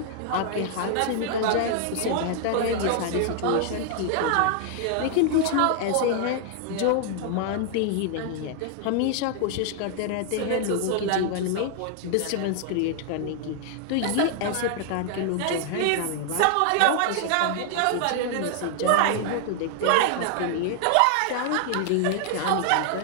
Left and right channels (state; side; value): different; both; correlation 0.00